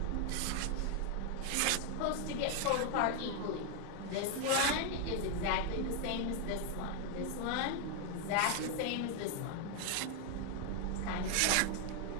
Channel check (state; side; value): different; both; correlation 0.00